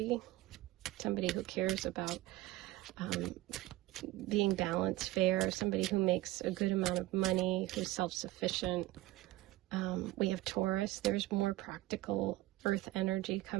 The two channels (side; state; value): left; quieter; 17.2 dB